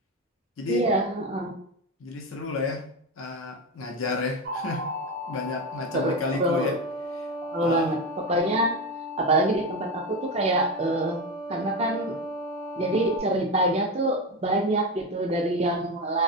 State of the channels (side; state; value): both; normal; correlation 0.17